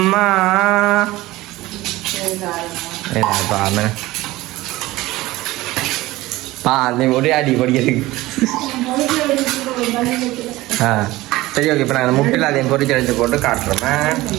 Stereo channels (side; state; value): left; quieter; 18.4 dB